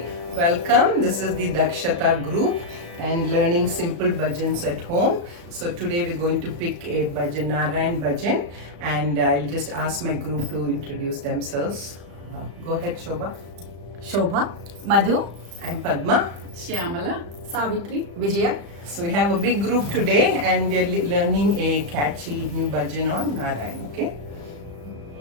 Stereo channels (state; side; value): late; left; 35 ms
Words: welcome. This is the Dakshata group and learning simple bhajans at home. So today we're going to pick a bhajan, Narayan bhajan, and I'll just ask my group to introduce themselves. Go ahead, Shobha. Shobha, Madhu, I'm Padma. Shyamala, Savitri, Vijaya. So we have a big group today and we're learning a catchy new bhajan on Narayan, okay?